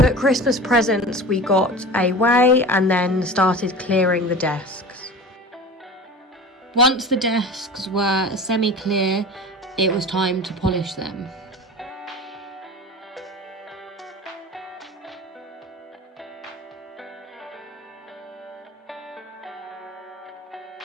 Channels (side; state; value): both; normal; correlation 0.35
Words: Christmas presents we got away and then started clearing the desks. Once the desks were semi-clear, it was time to polish them.